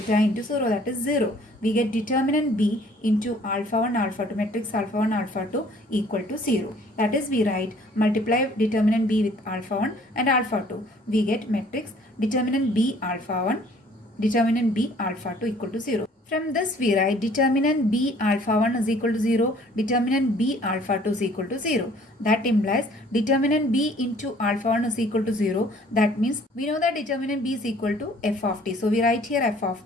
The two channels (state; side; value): normal; both; correlation 0.56